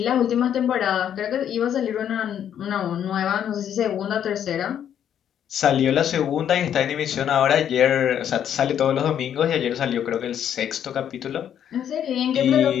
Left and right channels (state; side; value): quieter; right; 9.5 dB